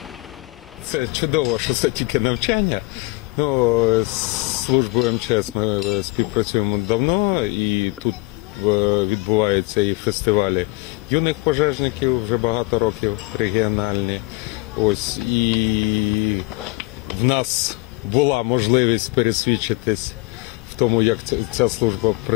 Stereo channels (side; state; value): right; quieter; 24.0 dB